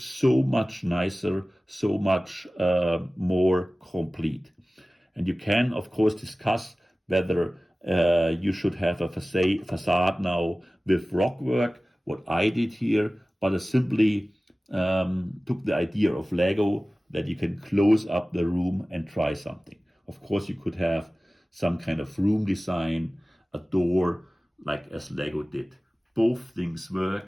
much nicer, so much more complete. And you can, of course, discuss whether you should have a facade now with rockwork, what I did here, but I simply took the idea of LEGO that you can close up the room and try something. Of course, you could have some kind of room design, a door, like as LEGO did. Both things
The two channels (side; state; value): both; normal; correlation 0.97